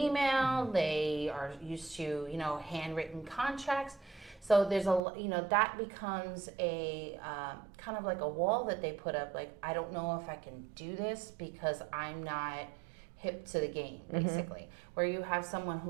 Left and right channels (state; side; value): drops out; left; at 5.0 s